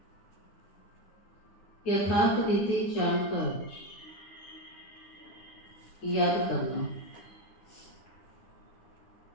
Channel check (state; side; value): late; right; 9.8 ms